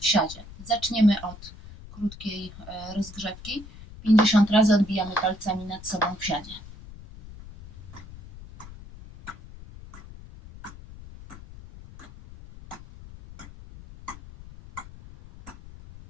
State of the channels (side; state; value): left; noise; rumble, 17 dB below the sound